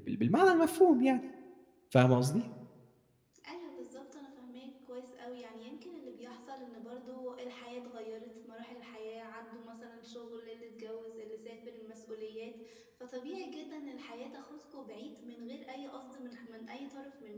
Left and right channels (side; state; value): both; identical; correlation 1.00